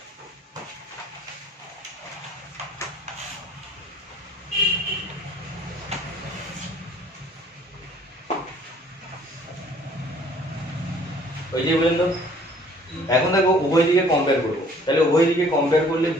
ওই যে বললেন তো, এখন দেখো উভয় দিকে কম্পেয়ার করব। তাহলে উভয় দিকে কম্পেয়ার করলে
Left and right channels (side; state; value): both; normal; correlation 0.56